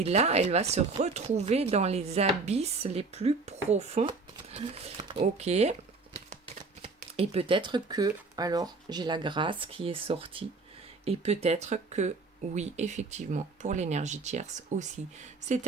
là, elle va se retrouver dans les abysses les plus profonds. Ok. Et peut-être que, alors, j'ai la grâce qui est sortie. Et peut-être que, oui, effectivement, pour l'énergie tierce aussi.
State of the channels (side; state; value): left; quieter; 4.0 dB